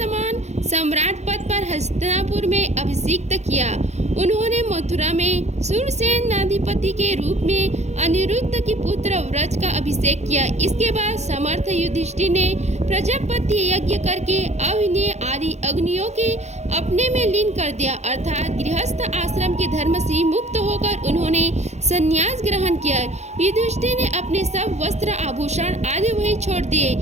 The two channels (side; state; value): left; late; 0.33 ms